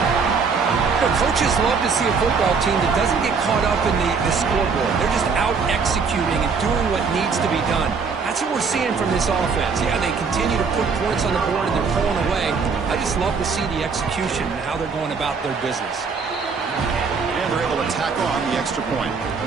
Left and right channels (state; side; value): quieter; left; 5.3 dB